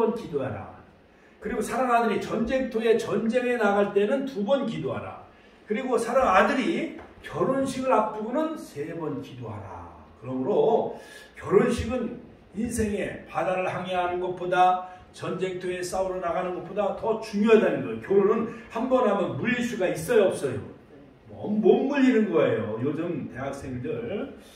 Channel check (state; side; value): identical; both; correlation 1.00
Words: 기도하라. 그리고 사랑하는 아들이 전쟁터에 전쟁에 나갈 때는 2번 기도하라. 그리고 사랑하는 아들이 결혼식을 앞두고는 3번 기도하라. 그러므로 결혼식은 인생에 바다를 항해하는 것보다 전쟁터에 싸우러 나가는 것보다 더 중요하다는 거예요. 결혼은 한 번 하면 물릴 수가 있어요, 없어요? 못 물리는 거예요. 요즘 대학생들